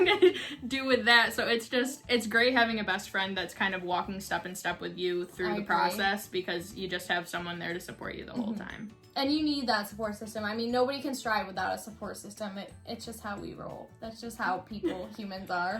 to do with that. So it's great having a best friend that's kind of walking step in step with you through the process because you just have someone there to support you the whole time. And you need that support system. I mean, nobody can strive without a support system. It's just how we roll. That's just how humans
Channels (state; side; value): identical; both; correlation 1.00